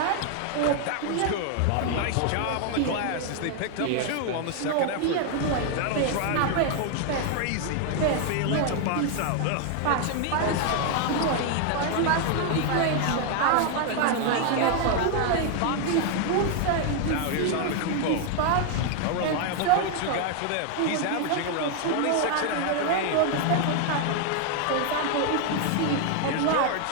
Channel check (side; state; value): both; different; correlation 0.00